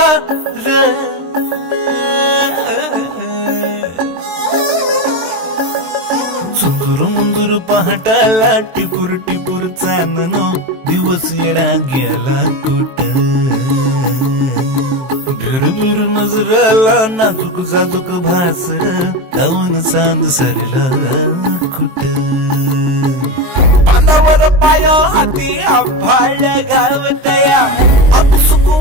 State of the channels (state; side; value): late; left; 23 ms